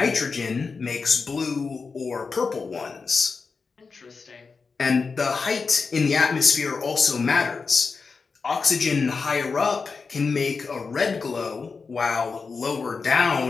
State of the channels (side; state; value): right; quieter; 4.8 dB